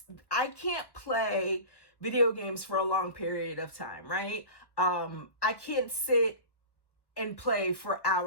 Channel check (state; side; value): late; right; 1.1 ms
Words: I can't play video games for a long period of time, right? I can't sit and play for